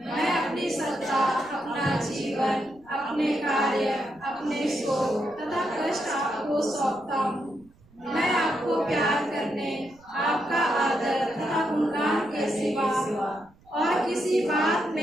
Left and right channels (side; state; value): right; noise; rumble, 29 dB below the sound